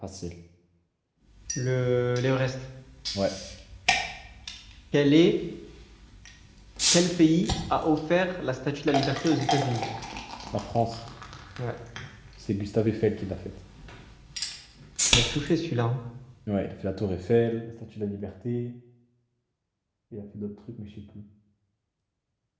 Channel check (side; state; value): both; identical; correlation 1.00